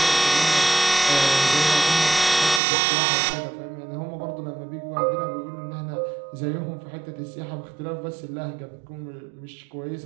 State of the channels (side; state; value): left; drops out; at 2.6 s